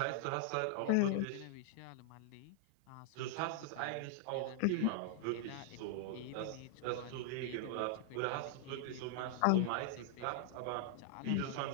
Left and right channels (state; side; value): different; both; correlation 0.00